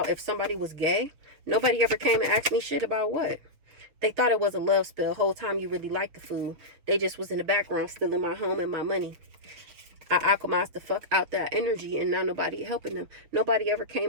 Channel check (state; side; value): late; left; 6.5 ms